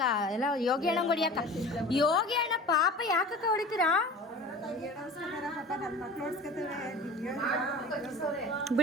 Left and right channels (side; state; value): both; normal; correlation 0.39